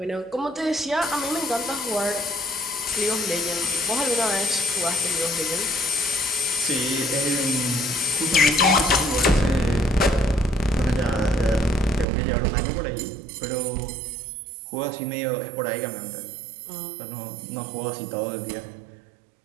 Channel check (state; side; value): drops out; left; at 12.1 s